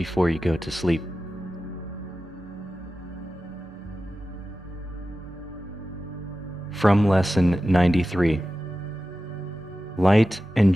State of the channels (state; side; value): normal; both; correlation 0.94